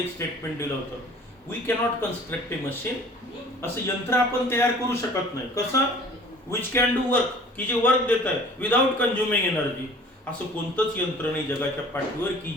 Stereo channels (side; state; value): both; normal; correlation 0.48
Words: स्टेटमेंट दिलं होतं. We cannot construct a machine, असं यंत्र आपण तयार करू शकत नाही. कसं? विच कॅन डू वर्क, की जे वर्क देत आहे विदाउट कंझ्युमिंग एनर्जी. असं कोणतंच यंत्र नाही जगाच्या पाठीवर की